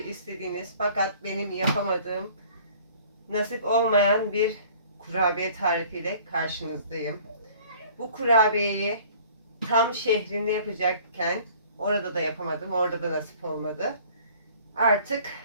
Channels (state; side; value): inverted; both; correlation -0.51